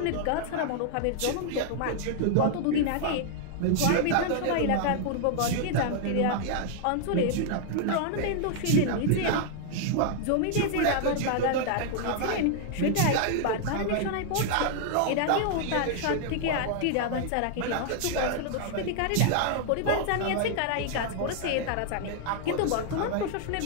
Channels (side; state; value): both; different; correlation 0.00